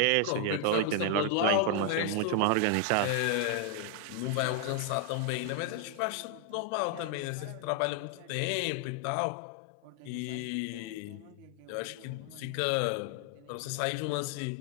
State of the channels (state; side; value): different; both; correlation 0.00